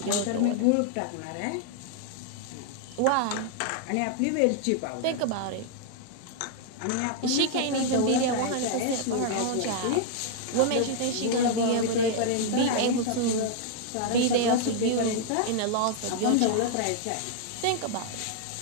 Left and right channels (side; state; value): both; different; correlation 0.00